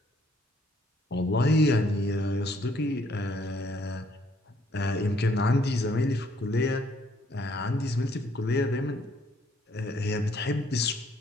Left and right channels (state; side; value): normal; both; correlation 0.66